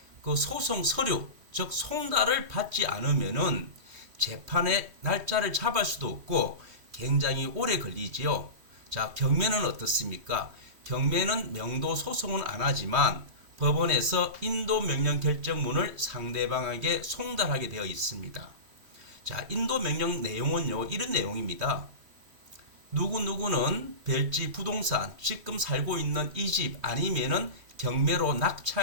그 소송 서류, 즉 송달을 받지 않으면은 재판의 날짜를 잡을 수도 없고 굉장히 오래 걸리지요. 자, 경매는 어떻습니까? 경매는 명도 소송은 안 하지만 법원에서 인도 명령 결정문을 상대방에게 송달하게 되어 있습니다. 자, 인도 명령 내용은요, 이런 내용입니다. 누구누구는 별지 부동산, 지금 살고 있는 이 집 아니면은 경매로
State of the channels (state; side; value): late; left; 3.2 ms